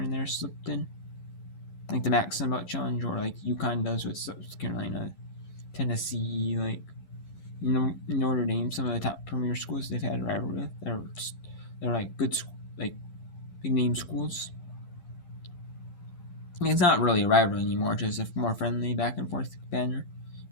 and there slipped in, like the Max Sunbelt Challenge, or like UConn does with South Carolina, Tennessee, like Notre Dame. Some of the top premier schools they've had a rivalry with. They're like good, like big name schools. It's not really a rivalry anymore, just a more friendly back and forth banner.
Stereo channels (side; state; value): right; late; 11 ms